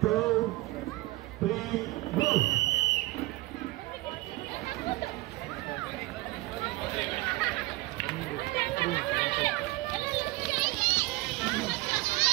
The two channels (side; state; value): left; quieter; 20.3 dB